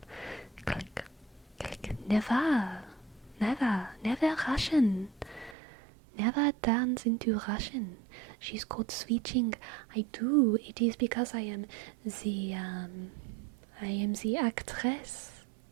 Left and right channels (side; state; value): left; drops out; at 5.6 s